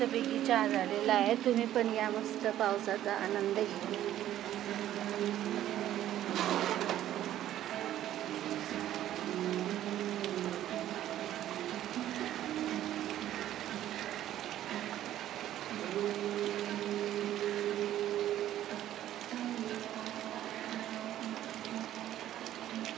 चहा झालेला आहे. तुम्ही पण या मस्त पावसाचा आनंद घ्या.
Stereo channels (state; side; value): quieter; left; 12.5 dB